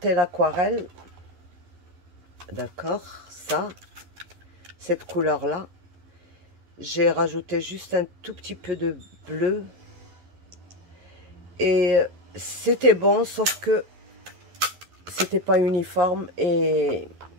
l'aquarelle. D'accord, ça, cette couleur-là. J'ai rajouté juste un tout petit peu de bleu. Et c'était bon, sauf que c'était pas uniforme et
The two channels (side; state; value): left; late; 11 ms